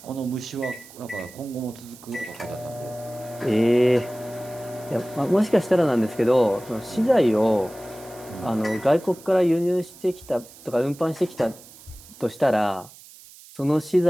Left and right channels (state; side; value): noise; right; hiss, 21 dB below the sound